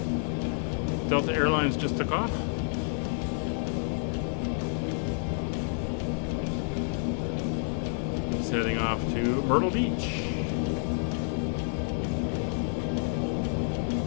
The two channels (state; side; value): silent; right; 58 dB below the other